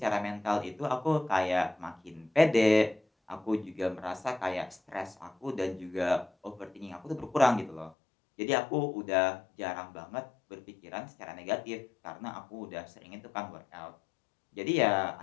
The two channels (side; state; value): right; drops out; at 8.0 s